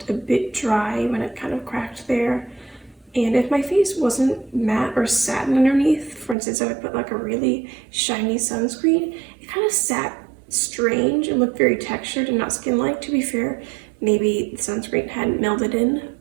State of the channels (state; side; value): drops out; left; at 6.4 s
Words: a bit dry when it kind of cracked there. And if my face wasn't matte or satin underneath, for instance, I would put like a really shiny sunscreen, it kind of sat strange and looked very textured and not skin-like. To be fair, maybe the sunscreen hadn't melded in